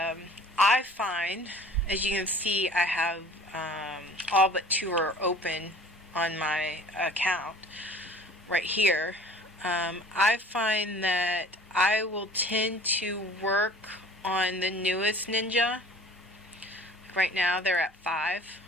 find, as you can see, I have all but 2 are open on my account right here. I find that I will tend to work on the newest ninja. Right now they're at 5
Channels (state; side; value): normal; both; correlation 0.47